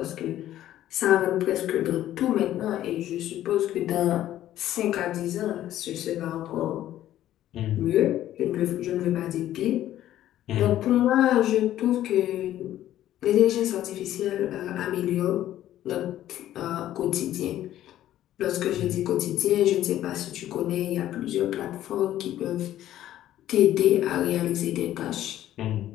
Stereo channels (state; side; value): quieter; right; 12.9 dB